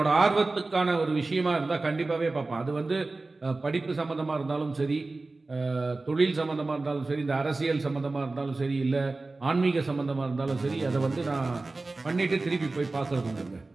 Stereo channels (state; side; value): quieter; left; 3.4 dB